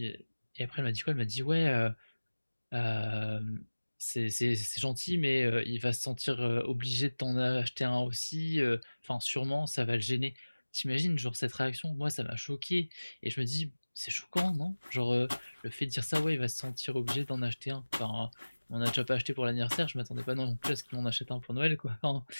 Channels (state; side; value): inverted; both; correlation -1.00